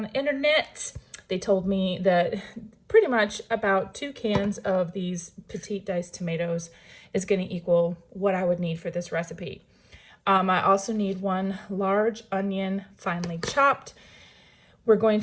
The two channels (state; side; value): identical; both; correlation 1.00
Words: the internet, they told me that pretty much about 2 cans of these petite diced tomatoes is going to equal what I would need for this recipe. I also need 1 large onion finely chopped. We're going